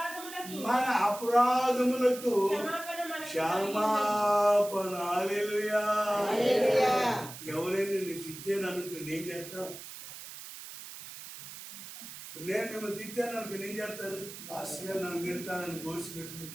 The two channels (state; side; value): noise; right; hiss, 13 dB below the sound